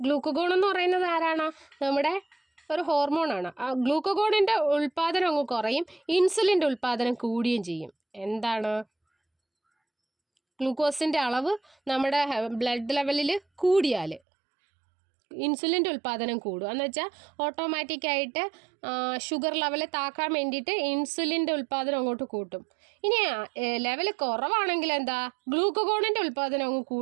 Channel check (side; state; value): left; drops out; at 14.2 s